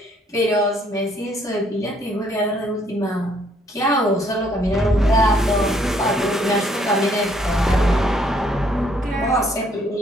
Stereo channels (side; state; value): both; normal; correlation 0.67